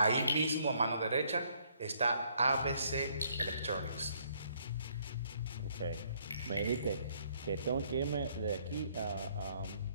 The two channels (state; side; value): inverted; both; correlation -0.67